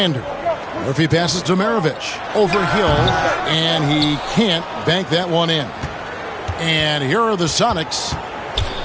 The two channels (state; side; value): identical; both; correlation 1.00